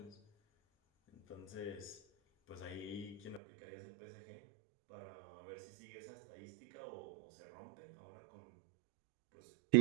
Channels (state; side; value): drops out; left; at 3.4 s